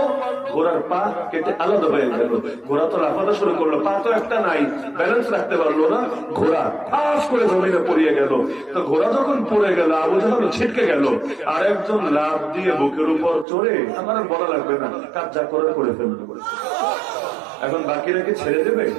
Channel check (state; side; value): drops out; left; at 13.5 s